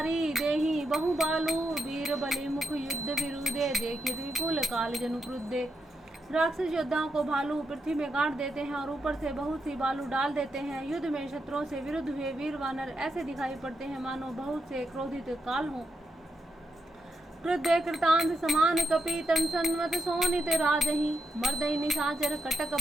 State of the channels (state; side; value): normal; both; correlation 0.83